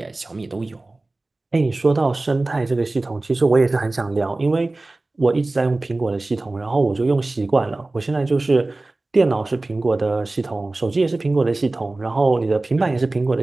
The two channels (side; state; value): left; quieter; 3.0 dB